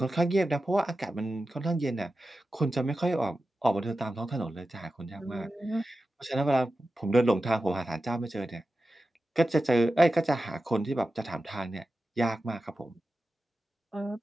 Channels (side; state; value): both; normal; correlation 0.93